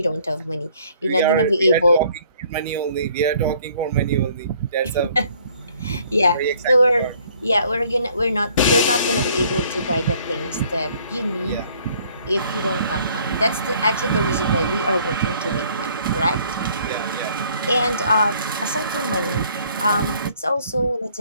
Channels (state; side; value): inverted; both; correlation -0.60